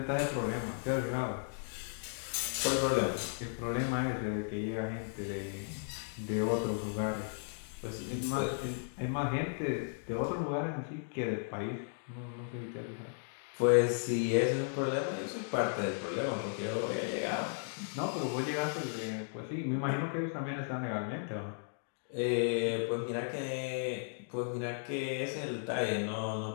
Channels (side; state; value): right; silent; digital silence